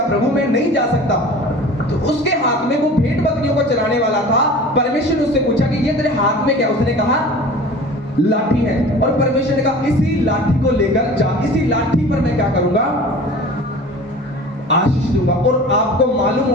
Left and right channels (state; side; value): normal; both; correlation 0.40